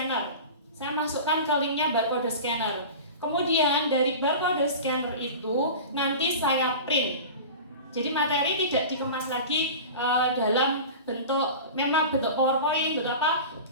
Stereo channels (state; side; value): inverted; both; correlation -0.33